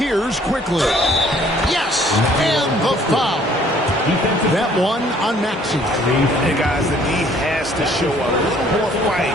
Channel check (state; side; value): normal; both; correlation 0.59